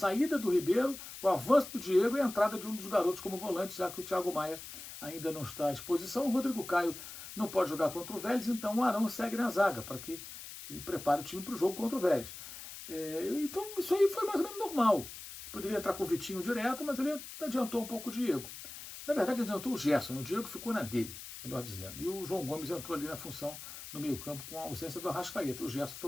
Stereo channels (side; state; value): left; noise; hiss, 12 dB below the sound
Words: do Ribeiro, o avanço do Diego e a entrada de um dos garotos como volante, já que o Thiago Maia ainda não está à disposição. O Rodrigo Caio não pode jogar contra o Vélez, então o Arão segue na zaga, para que ele prepare o time para o jogo contra o Vélez. Então isso aí foi mais ou menos normal. Poderia entrar com o Vitinho direto, mas ele adiantou um pouco o Diego. Na verdade, adiantou o Gerson, o Diego ficou na dele, melhor dizendo. E o João Gomes entrou ali na função no meio-campo com a ausência do Arrascaeta. O Gerson